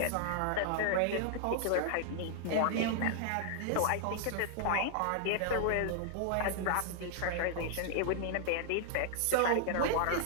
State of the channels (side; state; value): both; different; correlation -0.01